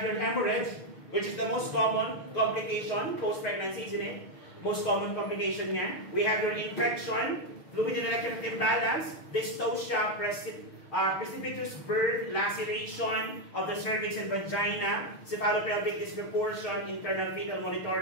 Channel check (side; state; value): right; late; 6.5 ms